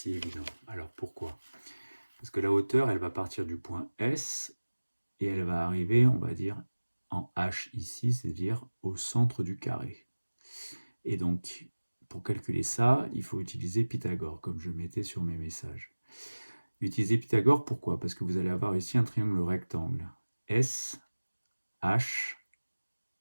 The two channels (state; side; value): inverted; both; correlation -1.00